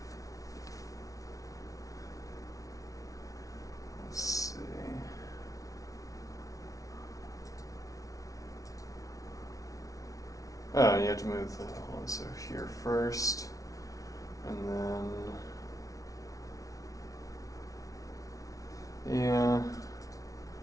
Let's see. Oh, you have to move the one, so here first, and then, yeah,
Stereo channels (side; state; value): right; late; 0.17 ms